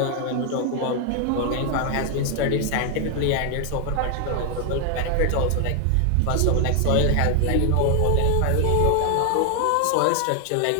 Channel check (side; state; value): both; different; correlation 0.00